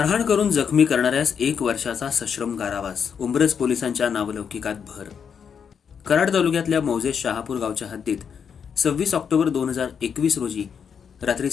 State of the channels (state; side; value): quieter; right; 7.0 dB